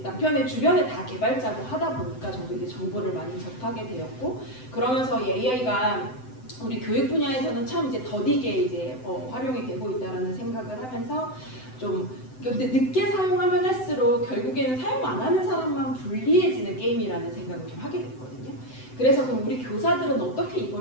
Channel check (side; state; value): right; late; 7.8 ms